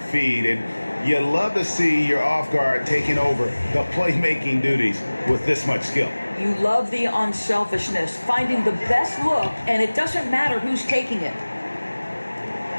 feed. And you love to see your off guard taking over the playmaking duties with this much skill. You love the unselfishness, finding the best look, and it doesn't matter who's taking it.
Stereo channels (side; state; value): both; inverted; correlation -1.00